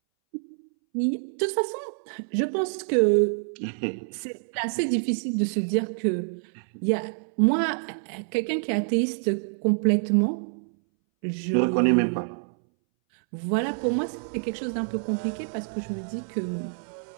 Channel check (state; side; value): silent; left; 60 dB below the other